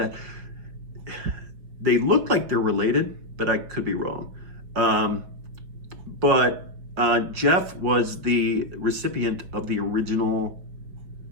They look like they're related, but I could be wrong. But Jeff was the recipient of the original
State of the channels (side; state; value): left; late; 5.6 ms